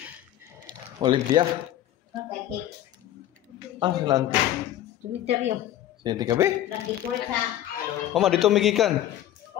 Olympia. Nanti. Cemetery. Sini kabe? Nandito sa... Mama dito migikan.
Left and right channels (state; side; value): quieter; right; 12.7 dB